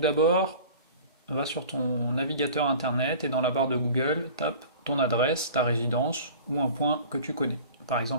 va sur ton navigateur internet et dans la barre de Google, tape ton adresse, ta résidence ou un point que tu connais. Par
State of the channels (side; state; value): both; inverted; correlation -0.42